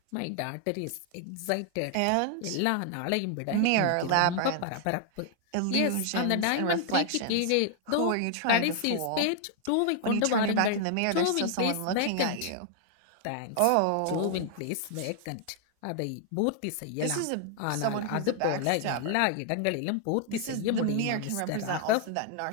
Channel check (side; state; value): both; different; correlation 0.00